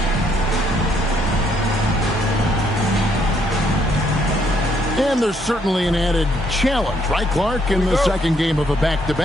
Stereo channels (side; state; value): both; normal; correlation 0.70